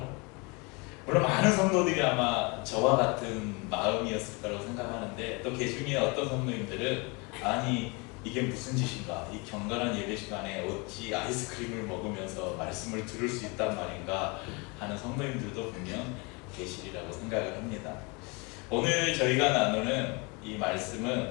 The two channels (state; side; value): quieter; right; 29.2 dB